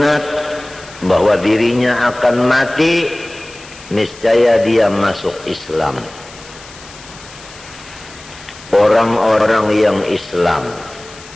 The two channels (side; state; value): left; noise; hiss, 19 dB below the sound